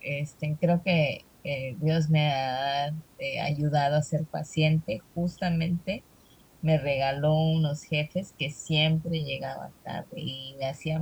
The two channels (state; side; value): identical; both; correlation 1.00